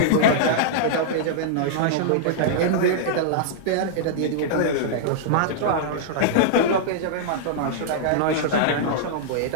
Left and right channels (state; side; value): different; both; correlation -0.02